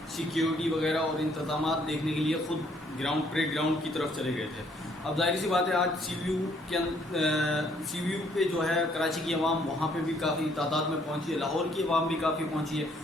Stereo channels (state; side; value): normal; both; correlation 0.66